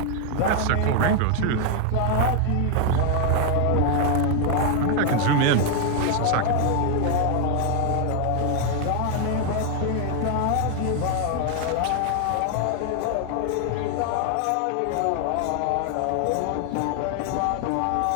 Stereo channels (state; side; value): different; both; correlation 0.00